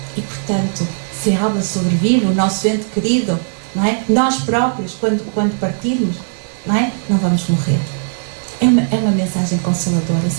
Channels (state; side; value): silent; left; digital silence